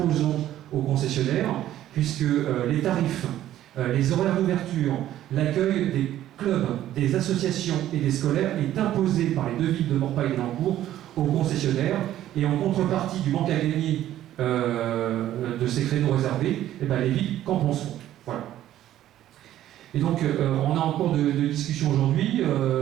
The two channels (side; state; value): left; quieter; 12.8 dB